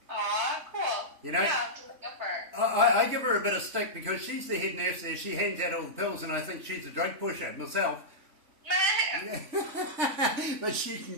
Aw, cool. You know? Yeah, I'll have to look up for her. I give her a bit of stick because she's the head nurse there. She hands out all the pills and I think she's a drug pusher myself. But she can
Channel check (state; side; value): late; left; 3.5 ms